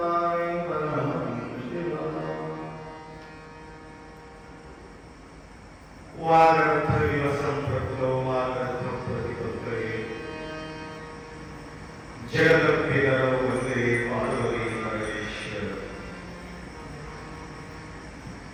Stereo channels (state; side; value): identical; both; correlation 1.00